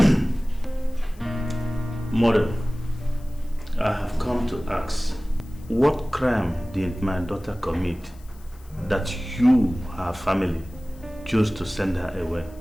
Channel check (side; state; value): left; noise; hiss, 27 dB below the sound